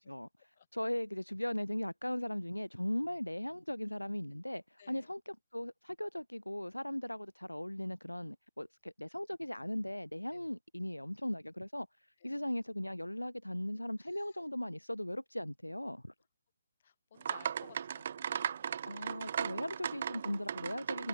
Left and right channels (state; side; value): inverted; both; correlation -0.94